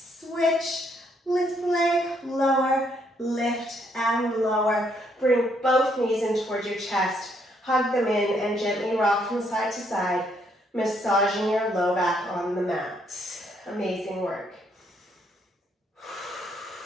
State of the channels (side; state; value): both; normal; correlation 0.71